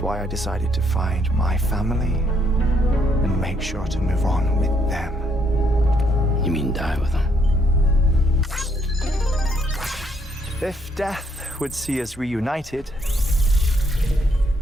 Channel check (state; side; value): normal; both; correlation 0.72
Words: why I decided to find my family and make sure to move on with them. You mean die with them? If death would see us reunited,